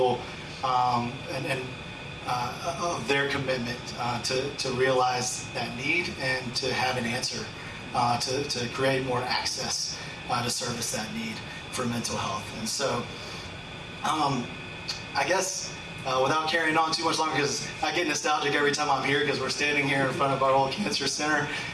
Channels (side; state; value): both; identical; correlation 1.00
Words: of their commitment to realize that need and to have an answer to create more access to service that need for mental health. And so I guess without carrying on too much longer, because I get nostalgic every time I'm here because we're standing here in front of our old cancer center,